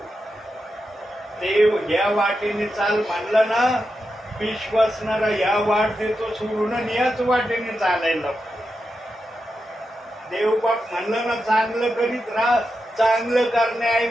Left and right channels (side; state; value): both; normal; correlation 0.88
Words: देव या वाटेने चाल म्हणलं ना, विश्वासणारा या वाट देतो सोडून याच वाटेने चालायला लागतो. देवबाप म्हणलं ना चांगलं करीत राहा, चांगलं